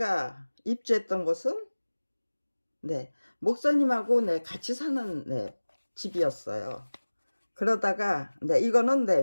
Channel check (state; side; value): inverted; both; correlation -1.00